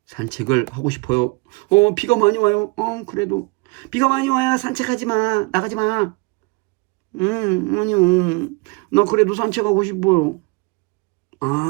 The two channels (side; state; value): left; quieter; 28.1 dB